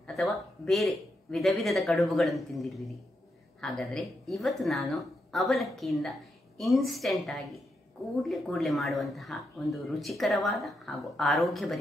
ಅಥವಾ ಬೇರೆ ವಿಧ ವಿಧದ ಕಡುಬುಗಳನ್ನು ತಿಂದಿರುವಿರಿ. ಹಾಗಾದರೆ ಇವತ್ತು ನಾನು ಅವಲಕ್ಕಿಯಿಂದ ಇನ್ಸ್ಟೆಂಟ್ ಆಗಿ ಕೂಡಲೇ ಮಾಡುವಂತಹ ಒಂದು ರುಚಿಕರವಾದ ಹಾಗೂ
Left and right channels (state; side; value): normal; both; correlation 0.83